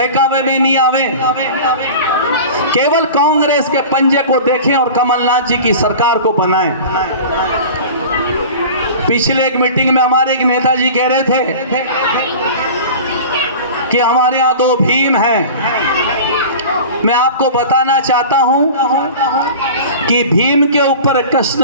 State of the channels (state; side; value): inverted; both; correlation -0.37